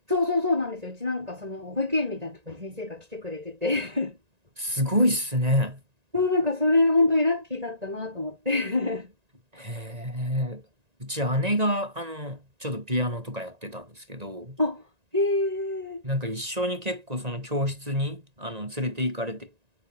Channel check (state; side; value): late; left; 1.9 ms